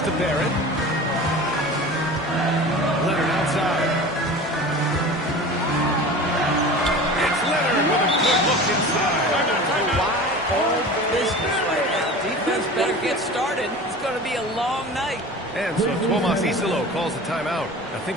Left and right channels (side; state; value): both; normal; correlation 0.36